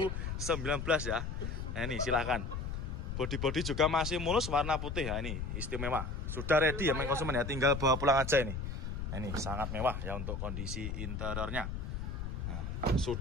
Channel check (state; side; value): noise; left; rumble, 4 dB below the sound